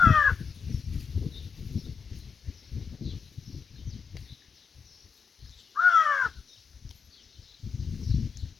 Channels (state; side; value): quieter; right; 5.8 dB